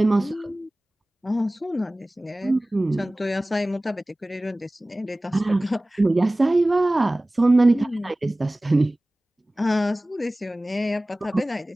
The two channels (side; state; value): both; normal; correlation 0.98